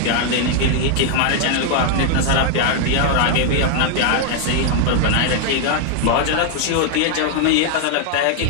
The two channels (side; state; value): both; different; correlation 0.00